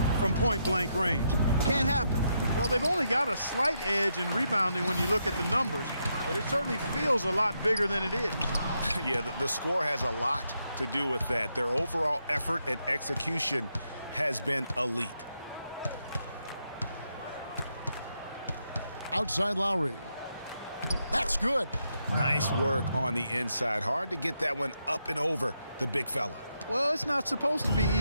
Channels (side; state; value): both; inverted; correlation -0.81